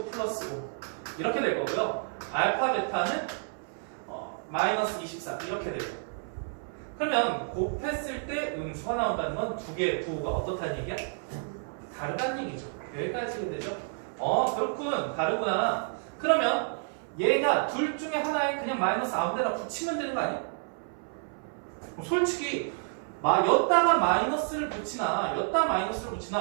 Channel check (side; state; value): left; silent; 58 dB below the other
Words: 플러스 5 이렇게 될 거고요. 알파 베타는 마이너스 24 이렇게 돼요. 그러면 곱했을 때 음수가 나온다는 건 두 개의 부호가 어떻다는 얘기야? 다르다는 얘기죠. 여기까지 되죠? 그렇군. 다르구나. 그러면 얘가 둘 중에 하나에 그냥 마이너스 아무 데나 붙이면 되는 거 아니야? 솔직히 였다가 마이너스를 붙이나 였다 마이너스를